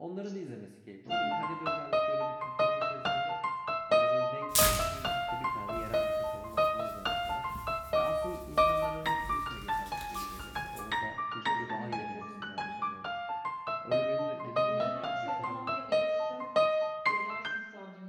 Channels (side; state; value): both; identical; correlation 1.00